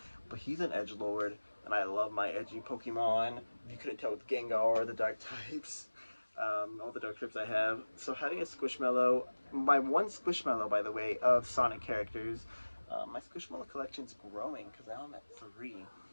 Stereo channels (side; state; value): both; inverted; correlation -1.00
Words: but he's an edgelord, and I love my edgy Pokemon. You couldn't tell with Gengar or the dark types. All the dark types I have. So having a Squishmallow, my one Squishmallow, by the way, of Sonic characters, my Squishmallow collection's growing because now I'm at 3.